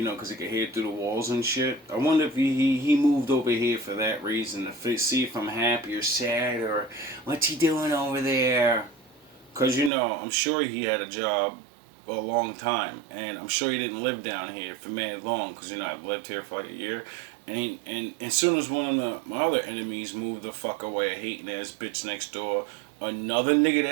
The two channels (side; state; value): left; drops out; at 9.9 s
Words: know, because he can hear through the walls and shit. I wonder if he moved over here for that reason, to see if I'm happy or sad or what's he doing over there. Because, you know, I'm sure he had a job a long time, and I'm sure he didn't live down here for mad long, because, you know, I've lived here for like a year. And as soon as one of my other enemies moved the fuck away, a hating ass bitch next door, another nigga